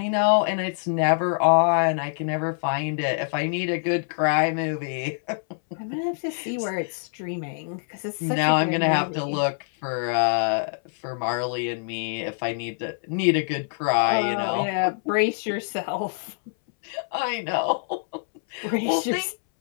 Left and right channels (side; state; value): right; silent; 62 dB below the other